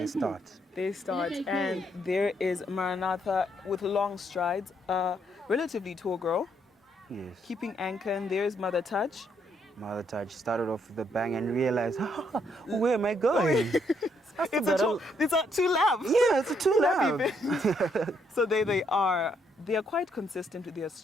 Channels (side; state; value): both; normal; correlation 0.73